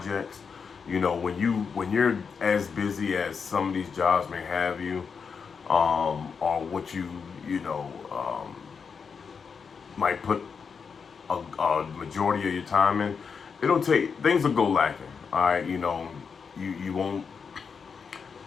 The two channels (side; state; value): right; quieter; 5.9 dB